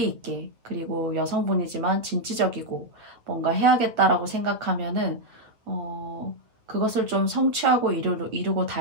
있게, 그리고 여성분이지만 진취적이고 뭔가 해야겠다라고 생각하면은 그것을 좀 성취하고 이루고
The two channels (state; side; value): late; left; 8.6 ms